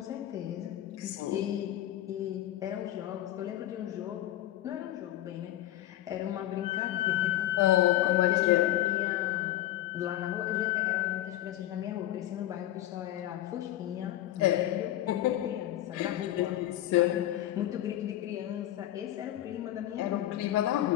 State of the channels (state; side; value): quieter; right; 13.8 dB